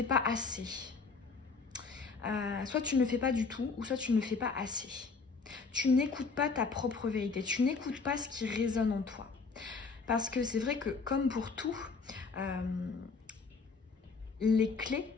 pas assez. Soit tu ne le fais pas du tout, ou soit tu ne le fais pas assez. Tu n'écoutes pas ta propre vérité, tu n'écoutes pas ce qui résonne en toi. Parce que c'est vrai que, comme pour tout, les clés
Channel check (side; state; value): right; quieter; 4.6 dB